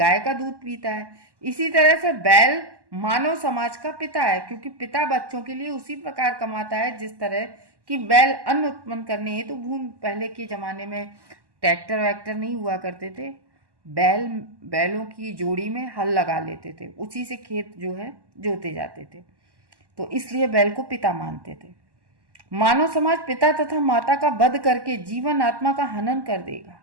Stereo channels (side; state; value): left; late; 1.1 ms